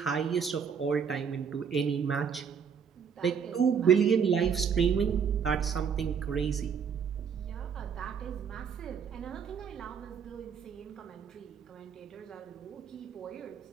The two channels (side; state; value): left; quieter; 6.9 dB